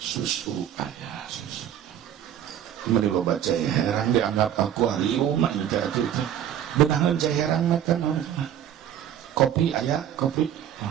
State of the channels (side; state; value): left; quieter; 10.2 dB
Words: ayah, susu. Mari lo baca herang dianggap akuarium mah engke atuh teh. Beunangan cai herang mah teh kopi aya kopi.